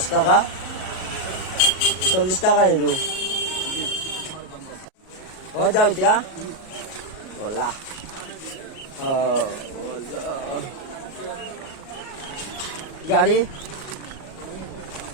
টাকা 40 টাকা নিদু হৈ যাও এতিয়া বলা গাড়ী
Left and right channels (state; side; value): late; right; 37 ms